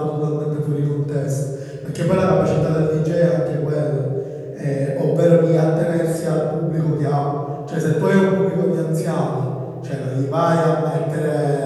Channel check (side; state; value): both; identical; correlation 1.00